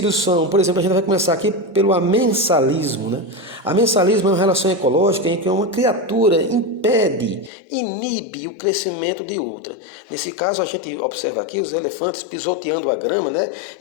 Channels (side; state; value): right; drops out; at 7.5 s